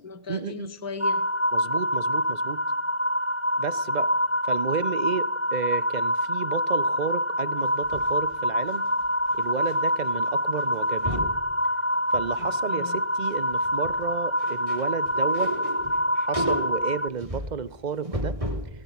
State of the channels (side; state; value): left; late; 2.0 ms